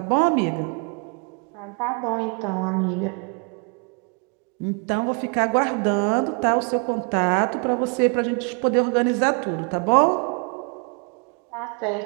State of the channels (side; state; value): left; quieter; 36.5 dB